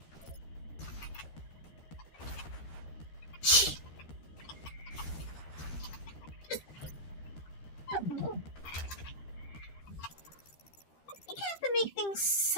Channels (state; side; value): late; right; 13 ms